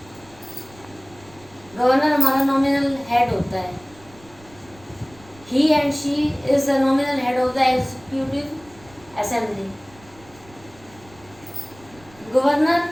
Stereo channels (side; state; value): right; noise; rumble, 24 dB below the sound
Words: गवर्नर हमारा नॉमिनल हेड होता है। He and she is the nominal head of the executive assembly. Governor